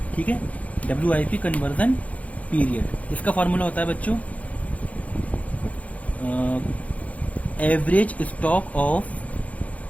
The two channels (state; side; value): late; right; 0.068 ms